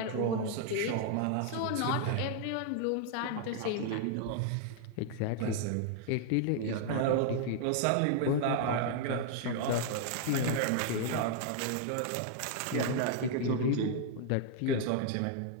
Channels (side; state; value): both; different; correlation 0.00